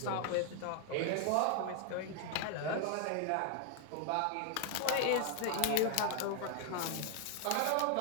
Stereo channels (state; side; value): different; both; correlation 0.00